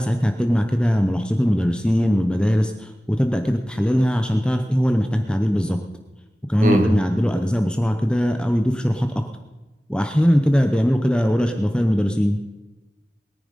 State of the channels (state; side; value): normal; both; correlation 0.97